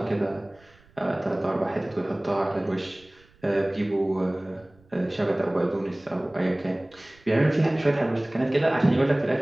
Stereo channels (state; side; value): noise; right; rumble, 29 dB below the sound